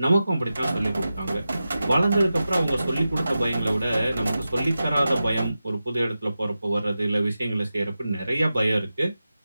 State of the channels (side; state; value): both; inverted; correlation -0.92